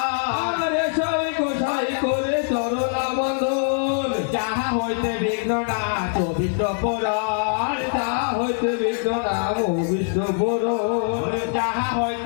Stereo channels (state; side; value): silent; right; digital silence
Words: সাই গোসাই করে চরণ বন্ধন যাহা হইতে বিঘ্ন না চবিষ্ট পুরন যাহা হইতে বিঘ্ন নাম বিষ্ণু পুরন যাহা